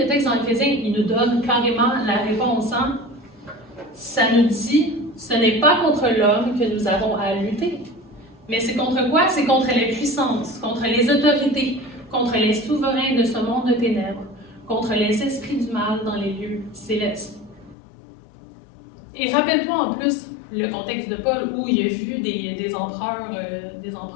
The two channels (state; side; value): drops out; right; at 17.8 s